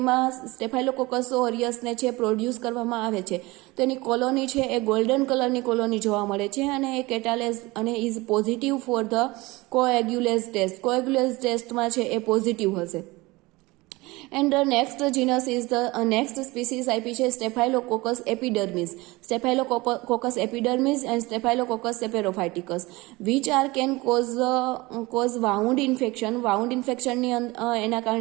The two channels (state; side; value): quieter; left; 22.1 dB